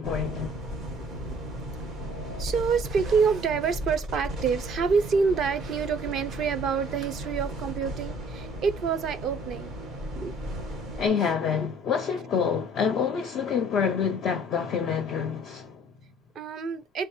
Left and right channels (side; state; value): both; normal; correlation 0.55